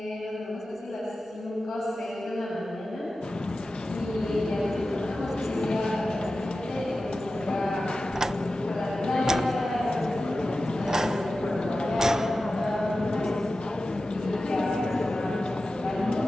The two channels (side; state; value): both; normal; correlation 0.94